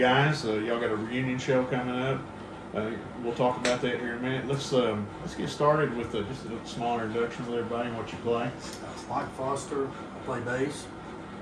y'all got a reunion show coming up. We'll talk about that here in a minute. Let's get started with just a smaller introduction with everybody and what you play. Mike Foster, I play bass.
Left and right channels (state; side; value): identical; both; correlation 1.00